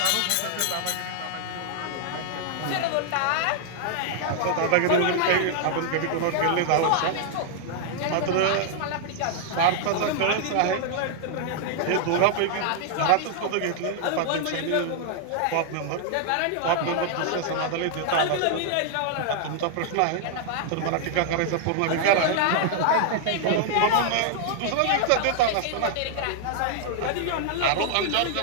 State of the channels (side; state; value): both; different; correlation 0.00